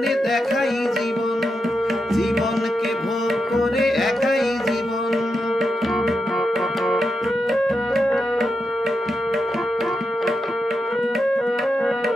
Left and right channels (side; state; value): both; normal; correlation 0.86